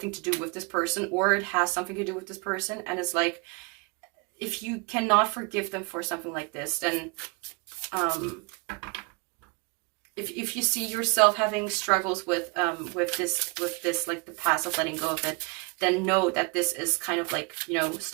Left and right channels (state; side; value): quieter; left; 31.8 dB